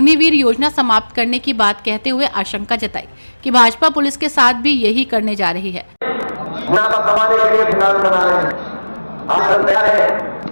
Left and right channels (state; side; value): inverted; both; correlation -1.00